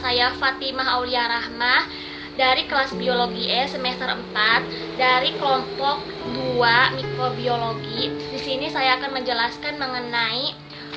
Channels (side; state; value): both; identical; correlation 1.00